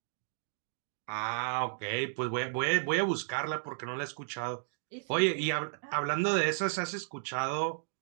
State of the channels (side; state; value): left; silent; digital silence